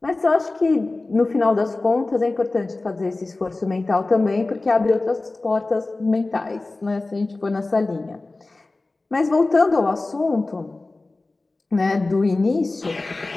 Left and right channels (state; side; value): quieter; right; 3.2 dB